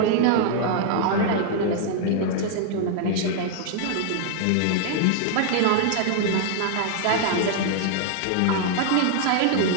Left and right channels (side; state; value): both; different; correlation 0.00